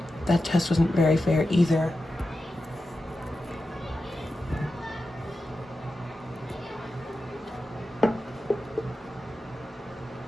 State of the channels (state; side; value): normal; both; correlation 0.91